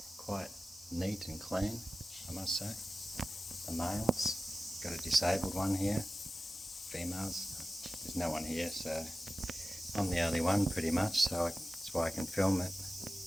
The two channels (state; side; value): normal; both; correlation 0.95